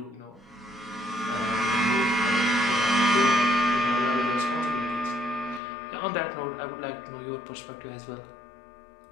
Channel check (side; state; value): right; drops out; at 5.6 s